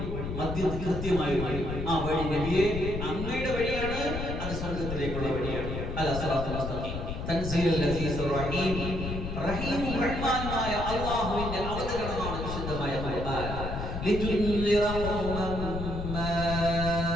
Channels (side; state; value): left; noise; rumble, 5 dB below the sound